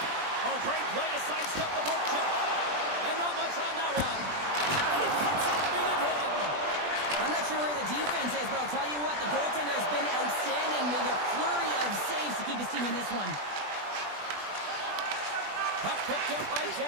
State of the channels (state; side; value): late; left; 20 ms